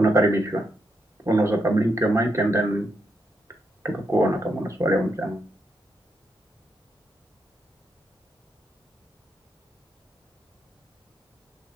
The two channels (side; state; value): both; normal; correlation 0.81